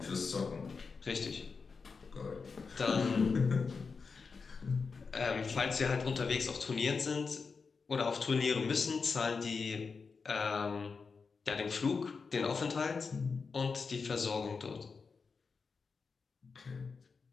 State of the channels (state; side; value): quieter; right; 4.9 dB